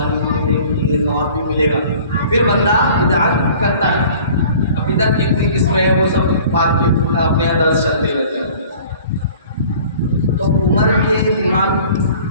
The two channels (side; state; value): both; inverted; correlation -0.49